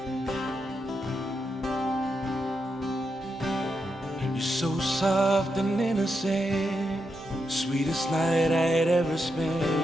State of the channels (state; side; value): normal; both; correlation 0.84